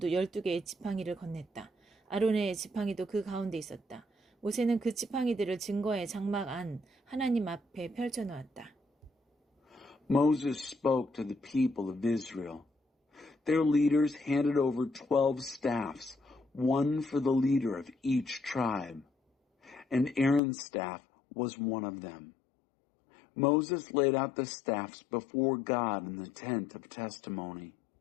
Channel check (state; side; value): drops out; right; at 20.4 s